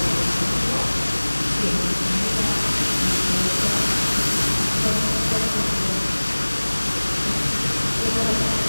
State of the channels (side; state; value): both; inverted; correlation -1.00